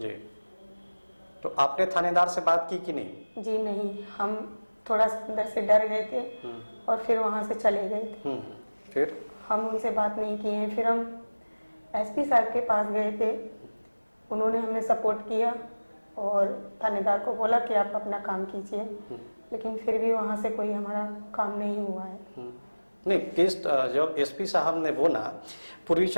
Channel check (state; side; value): inverted; both; correlation -1.00